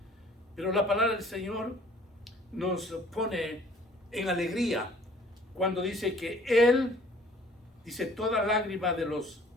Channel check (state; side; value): normal; both; correlation 0.54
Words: Pero la palabra del Señor nos pone en alegría cuando dice que Él, dice, toda lágrima de los,